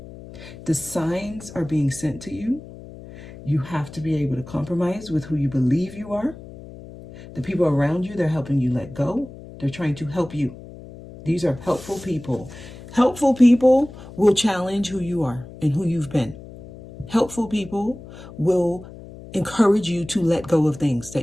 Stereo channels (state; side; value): noise; left; hum, 16 dB below the sound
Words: The signs are being sent to you. You have to be able to compromise with who you believe you are. The people around you, they're helping you let go. They're trying to help you. These are helpful people. Helpful people will challenge who you are and who you've been. Helpful people will encourage you to let go of things